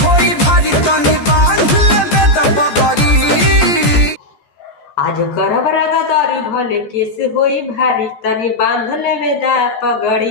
होई भारी तनी बांध लेबे दबगरी। आज करब रंगदारी भले केस होई भारी तनी बांध लेबे दा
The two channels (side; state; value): right; late; 14 ms